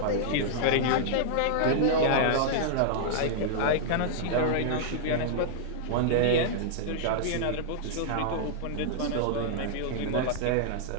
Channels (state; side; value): different; both; correlation -0.01